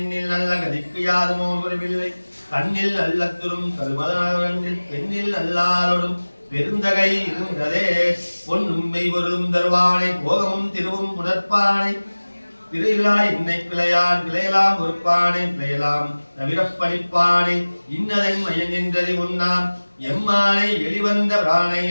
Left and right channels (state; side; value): inverted; both; correlation -1.00